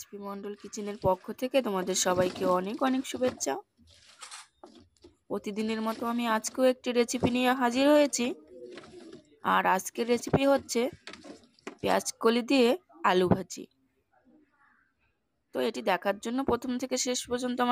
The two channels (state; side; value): identical; both; correlation 1.00